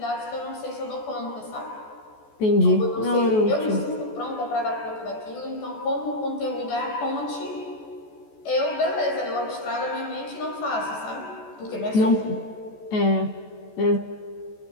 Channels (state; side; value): late; right; 14 ms